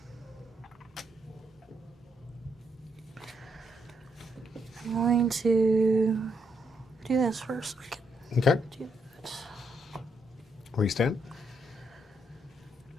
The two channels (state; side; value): normal; both; correlation 0.77